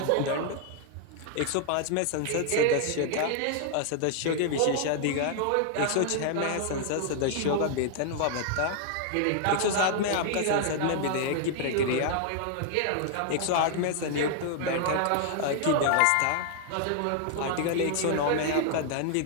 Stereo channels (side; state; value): both; different; correlation 0.00